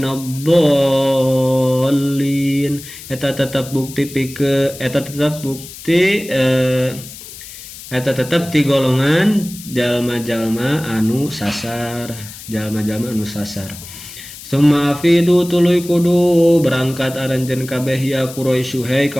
eta tetep ti golongan jalma-jalma anu sasar summa afidu tuluy kudu berangkat aranjeun kabeh ya Quraisy hai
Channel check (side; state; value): left; noise; hiss, 15 dB below the sound